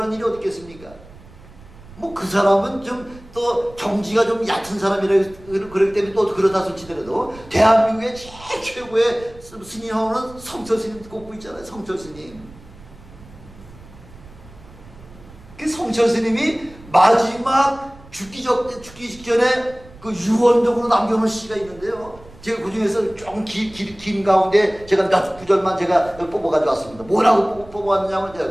일이 어디 있겠습니까? 뭐 그 사람은 좀 또 경지가 좀 얕은 사람이라 그렇기 때문에 또 그러다 솔치더라도 대한민국의 제일 최고의 스님하고는 성철스님 꼽고 있잖아요. 성철스님. 그 성철스님이 마지막 죽기 직전에 그 유언적으로 남겨놓은 시가 있는데요. 제가 그 중에서 좀 긴 가운데 제가 몇 구절만 제가 뽑아가지고 왔습니다. 뭐라고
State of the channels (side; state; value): right; noise; rumble, 21 dB below the sound